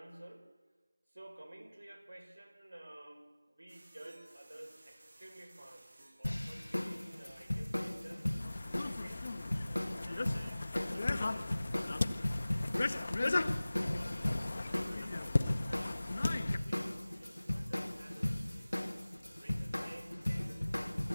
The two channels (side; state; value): both; inverted; correlation -0.99